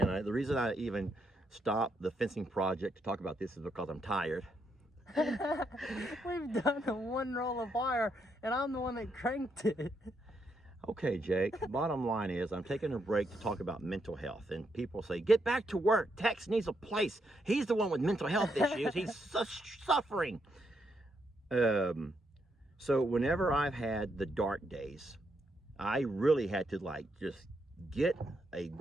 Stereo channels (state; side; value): normal; both; correlation 0.79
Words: the reason I even stopped the fencing project to talk about this is because I'm tired. We've done one roll of wire, and I'm the one that cranked it. Okay, Jake, bottom line is I'm taking a break to talk about mental health. And people say, get back to work. Tex needs a place. He's the one with mental health issues. He's suffering. So whenever I've had the dark days, I really had to like just get a